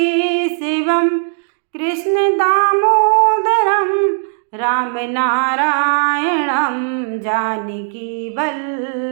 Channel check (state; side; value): silent; left; digital silence